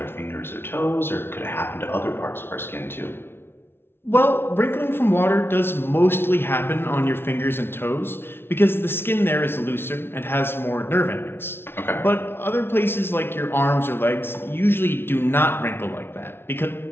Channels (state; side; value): late; right; 0.11 ms